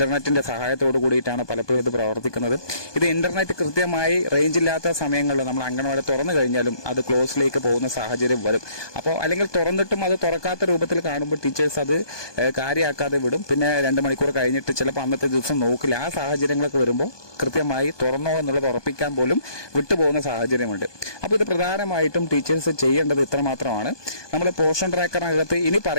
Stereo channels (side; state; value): right; late; 1.2 ms